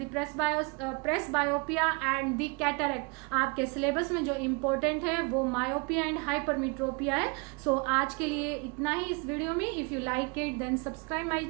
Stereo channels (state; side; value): quieter; left; 31.4 dB